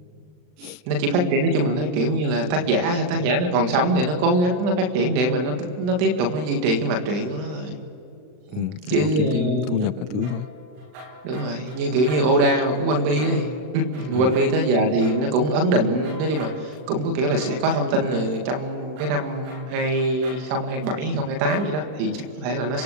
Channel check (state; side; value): late; left; 39 ms